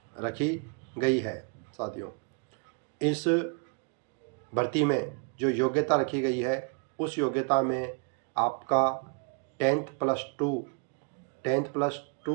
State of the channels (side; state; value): left; quieter; 36.0 dB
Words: रखी गई है। साथियों इस भर्ती में जो योग्यता रखी गई है उस योग्यता में आपका 10th+2